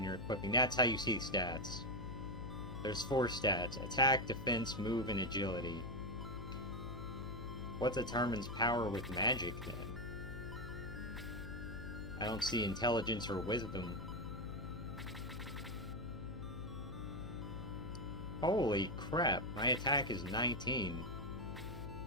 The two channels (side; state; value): left; noise; hum, 10 dB below the sound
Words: you're equipping. That's how you see stats. There's 4 stats. Attack, defense, move, and agility. What determines power with magic, then? I don't see intelligence or wisdom. Holy crap, my attack is 19.